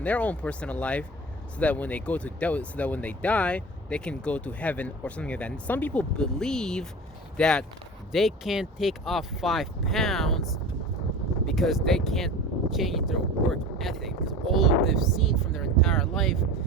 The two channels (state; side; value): normal; both; correlation 0.34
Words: their own personal life, so that when they die, they can go to heaven or something like that. And some people believe that they can't take off 5 pounds because they can't change their work ethic, because all they've seen from their entire life